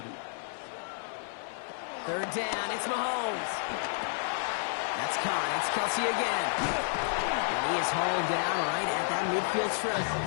3rd down, it's Mahomes. That's caught, it's Kelsey again. And he is hauled down right at that midfield stretch.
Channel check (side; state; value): right; silent; 55 dB below the other